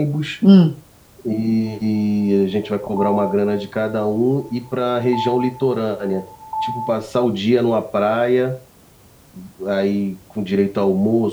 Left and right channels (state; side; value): identical; both; correlation 1.00